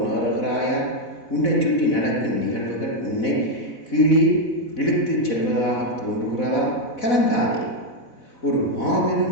உன்னை சுற்றி நடக்கும் நிகழ்வுகள் உன்னை கீழே இழுத்துச் செல்வதாக தோன்றுகிறதா? கலங்காதே. ஒரு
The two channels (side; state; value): right; late; 4.0 ms